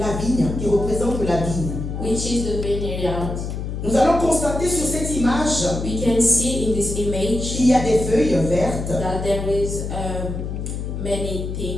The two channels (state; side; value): noise; left; hum, 5 dB below the sound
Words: vigne, qui représente la vigne. which is the vineyard. Nous allons constater sur cette image We can see in this image qu'il y a des feuilles vertes, that there is many